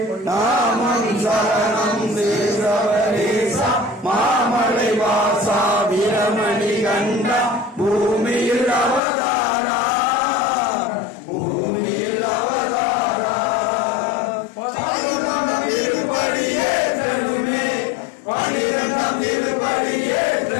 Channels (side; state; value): right; drops out; at 9.0 s